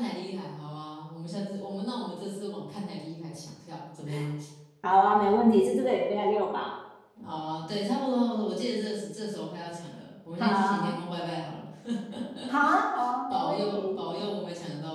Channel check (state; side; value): identical; both; correlation 1.00